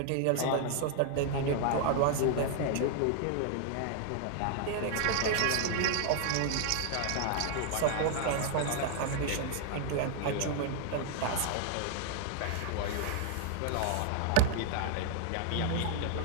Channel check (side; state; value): both; different; correlation 0.00